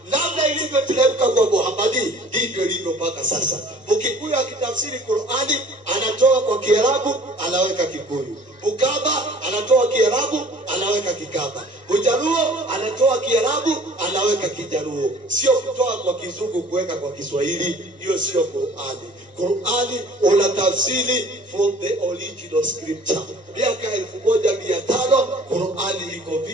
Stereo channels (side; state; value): both; normal; correlation 0.50